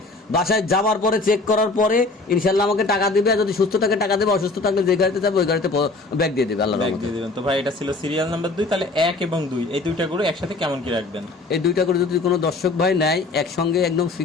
বাসায় যাওয়ার পরে চেক করার পরে ইনশাআল্লাহ আমাকে টাকা দিবে। আর যদি সুস্থ থাকে টাকা দেবে, অসুস্থ থাকলে যে গাড়িতে যাবে ওই গাড়িতে ব্যাগ দিয়ে দেবে, আল্লাহর রহমতে। তো ভাই এটা ছিল সিরিয়াল নাম্বার 2। তাহলে 1 এবং 2 এই দুইটা গরু একসাথে কেমন কি রাখবেন? এই দুইটা করে যদি কোনো দর্শক ভাই নেয়, একসঙ্গে একদম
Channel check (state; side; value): quieter; right; 3.4 dB